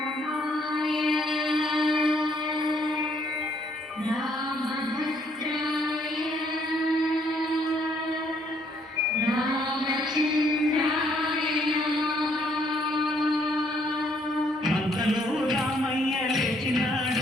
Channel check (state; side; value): normal; both; correlation 0.67